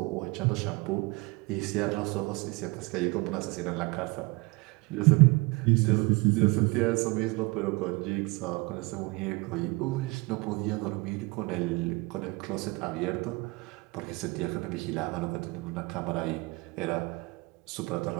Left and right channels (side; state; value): left; quieter; 25.6 dB